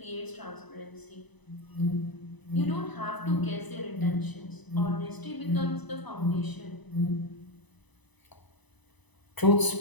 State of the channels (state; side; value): late; right; 1.0 ms